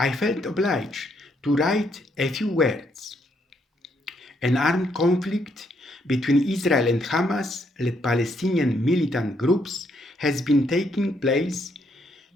felt obliged to write a few words. An armed conflict between Israel and Hamas-led Palestinian militant groups has been taking place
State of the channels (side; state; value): both; normal; correlation 0.73